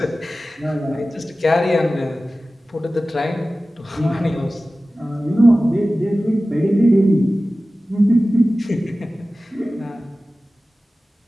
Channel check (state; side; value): normal; both; correlation 0.96